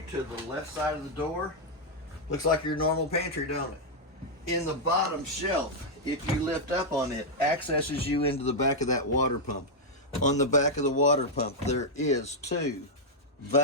to the left side of the door. Looks like your normal pantry, don't it? In the bottom shelf, if you lift up on it, accesses you into the back of that water pump. On the back of the water pump, there is 2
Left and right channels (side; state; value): both; normal; correlation -0.03